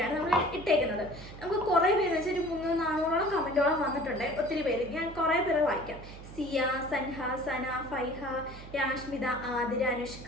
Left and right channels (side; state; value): right; noise; hum, 15 dB below the sound